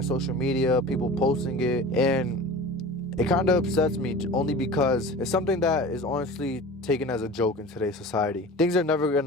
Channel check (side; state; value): both; normal; correlation 0.37